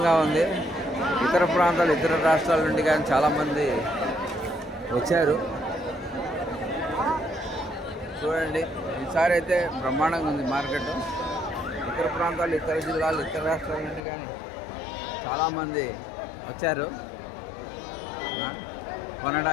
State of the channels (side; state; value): right; drops out; at 14.0 s